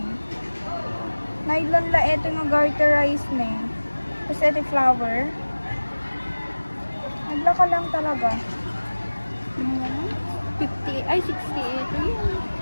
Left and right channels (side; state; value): both; inverted; correlation -1.00